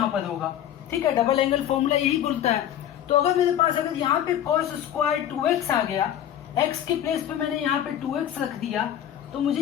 पर होगा। ठीक है, डबल एंगल फॉर्मूला यही बोलता है। तो अगर मेरे पास अगर यहाँ पे cos स्क्वायर 2x आ गया, x के प्लेस पे मैंने यहाँ पे 2x रख दिया, तो मुझे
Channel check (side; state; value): right; quieter; 10.8 dB